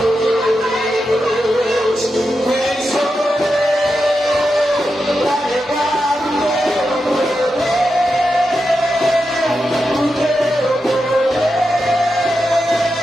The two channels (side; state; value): both; normal; correlation 0.88